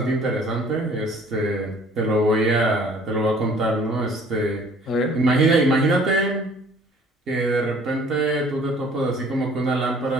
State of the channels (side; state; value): both; normal; correlation 0.54